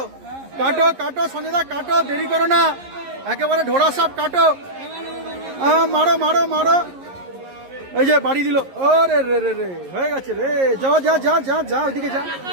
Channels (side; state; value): left; late; 11 ms